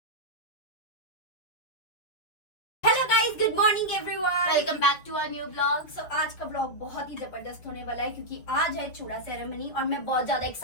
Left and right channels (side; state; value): right; late; 6.1 ms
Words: Good morning everyone, welcome back to our new blog. So आज का ब्लॉग बहुत ही जबरदस्त होने वाला है क्योंकि आज है चूड़ा सेरेमनी और मैं बहुत ज्यादा